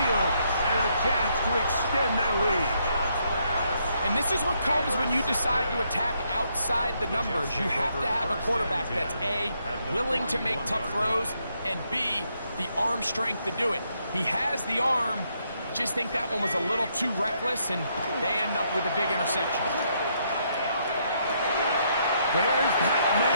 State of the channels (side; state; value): both; inverted; correlation -0.75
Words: and a chance to extend their lead. And this is what comes when you decide to attack outside the numbers. You have to have a quarterback that's A, willing to make tough throws, and B, the arm strength to do it. He has the arm, just think that one was a little too reckless, and they end up with a big interception. There's that